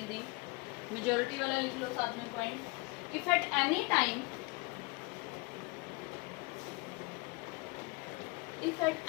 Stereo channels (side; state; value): right; quieter; 27.0 dB